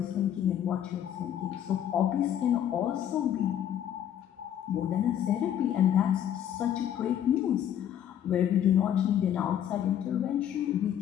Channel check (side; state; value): right; quieter; 10.1 dB